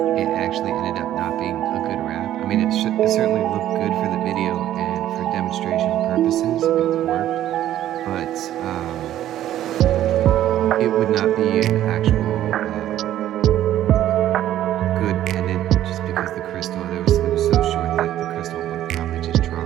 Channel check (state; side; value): quieter; left; 12.5 dB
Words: it actually ended up not being a good wrap. I mean, it certainly looked good for the video and for demonstration purposes, it worked, but it would not be an actual good pendant just because the crystal, it was so short that the crystal would probably just drop